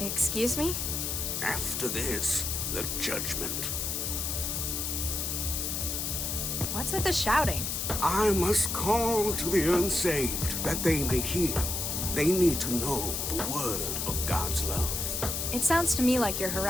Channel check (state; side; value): noise; left; hiss, 2 dB below the sound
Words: me? After this, the judgment. What's with the shouting? I must call to the unsaved that they may hear. They need to know the word of God's love. It sounds to me like you're